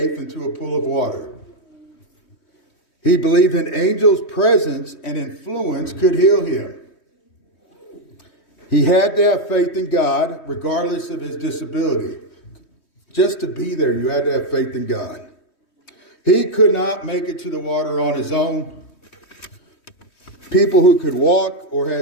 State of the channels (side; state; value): right; late; 3.2 ms